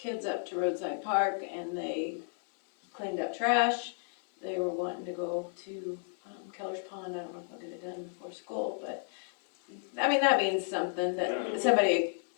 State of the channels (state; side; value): silent; right; digital silence